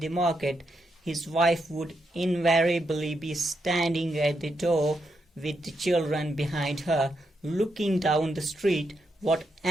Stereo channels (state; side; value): normal; both; correlation 0.82